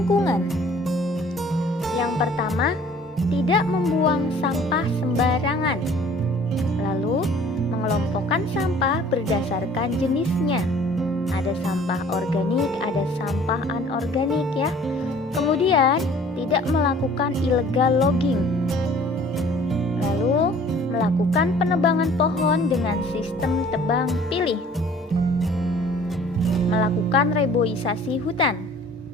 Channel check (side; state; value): both; normal; correlation 0.52